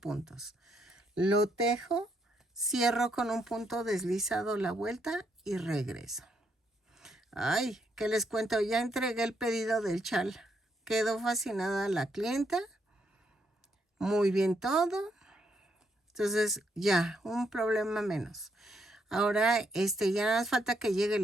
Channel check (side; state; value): both; normal; correlation 0.76